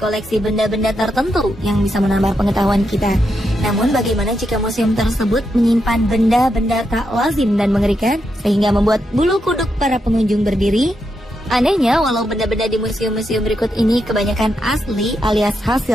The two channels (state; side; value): normal; both; correlation 0.83